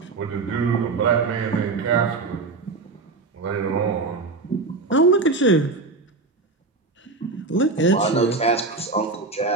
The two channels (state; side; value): quieter; left; 3.8 dB